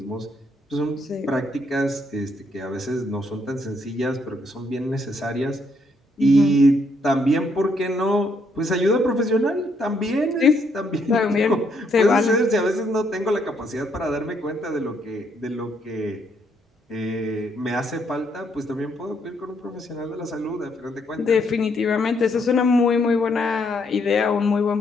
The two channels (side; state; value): both; normal; correlation 0.73